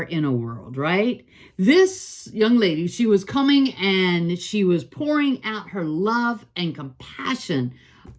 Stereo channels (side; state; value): both; identical; correlation 1.00